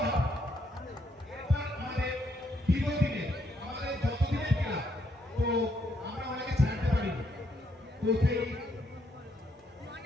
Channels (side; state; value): both; normal; correlation 0.74